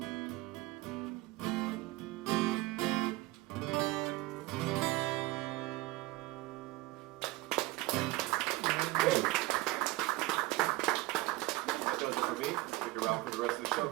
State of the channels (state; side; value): quieter; left; 19.5 dB